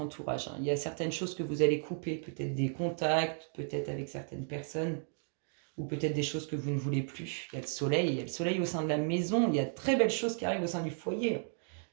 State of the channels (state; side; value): silent; left; 55 dB below the other